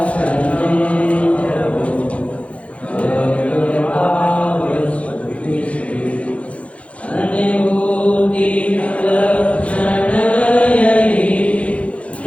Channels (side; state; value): right; late; 0.063 ms